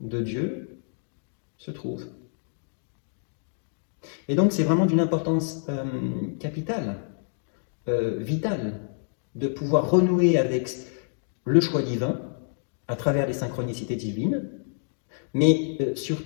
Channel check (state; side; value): silent; right; digital silence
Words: Dieu se trouve. Et donc c'est vraiment d'une importance capitale, vitale, de pouvoir renouer avec le choix divin à travers les synchronicités divines, mais